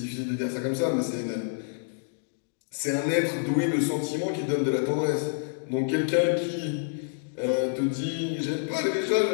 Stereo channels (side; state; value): right; silent; digital silence